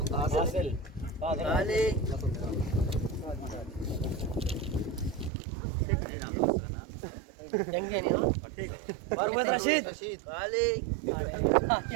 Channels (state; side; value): drops out; left; at 5.3 s